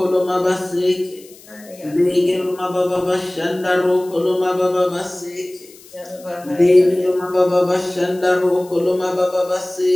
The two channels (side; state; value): left; noise; hiss, 23 dB below the sound